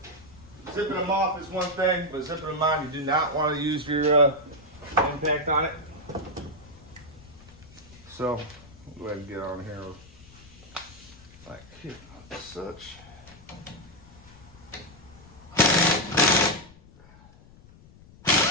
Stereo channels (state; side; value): noise; left; rumble, 23 dB below the sound